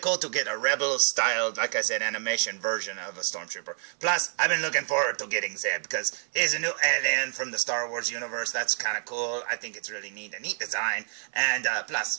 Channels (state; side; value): silent; left; 56 dB below the other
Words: to get a Rebel-styled, like I said, animation version of a Stormtrooper. Plus, I've been looking forward to getting Zeb because he's a new alien from the Star Wars universe. That's kind of cool. I think it's really neat, a neat design. And